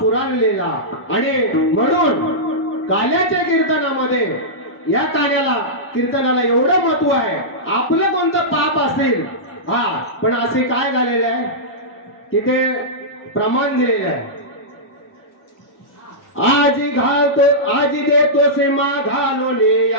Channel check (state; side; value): normal; both; correlation -0.13